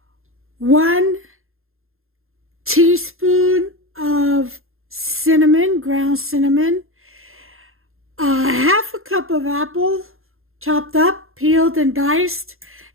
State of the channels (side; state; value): left; late; 0.61 ms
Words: 1 teaspoon of cinnamon, ground cinnamon, half a cup of apple, chopped up, peeled and diced.